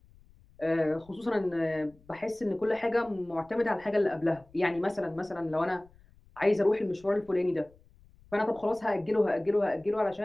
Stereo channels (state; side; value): noise; left; rumble, 27 dB below the sound